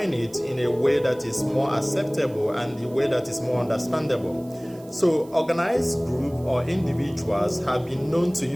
it in a way that is more acceptable and a way that is more understandable. So, organized group or individuals have been known to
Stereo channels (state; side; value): noise; right; hiss, 26 dB below the sound